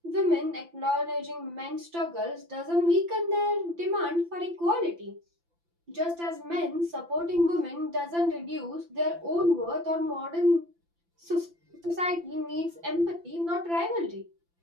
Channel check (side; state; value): left; late; 5.9 ms